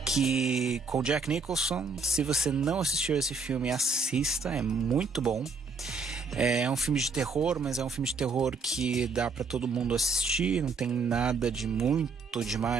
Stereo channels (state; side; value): quieter; left; 4.3 dB